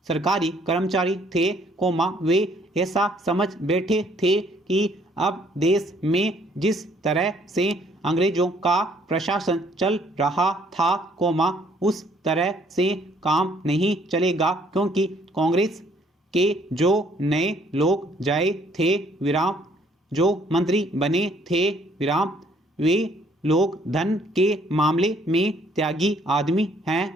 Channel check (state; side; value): normal; both; correlation 0.64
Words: सरकारी कर्मचारी थे कोमा वे ऐसा समझ बैठे थे कि अब देश में जिस तरह से अंग्रेजों का प्रशासन चल रहा था कोमा उस तरह से काम नहीं चलेगा क्योंकि कांग्रेस के जो नए लोग जाए थे विराम जो मंत्री बने थे विराम वे लोग धन के मामले में त्यागी आदमी हैं